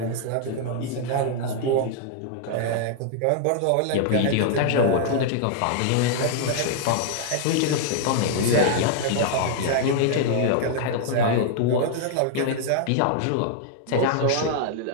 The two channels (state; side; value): different; both; correlation -0.01